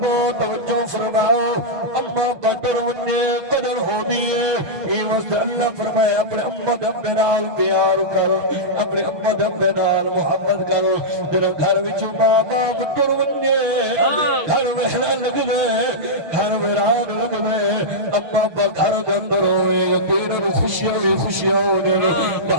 तवज्जो फरमाओ अम्मा कदर वन्ने कदर हो दिए ये वस्ते अल्लाह फरमाया अपने अम्मा दब्बे नाल प्यार कर अपने अम्मा दब्बे नाल मोहब्बत कर तेरे घर विचों मां बाप तुर वन्ने घर वहना लग गए घर वीरान लग गए अम्मा अब्बा घर दे अंदर होए यकीनन खुशियां भी खुशियां होने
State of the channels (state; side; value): late; left; 6.4 ms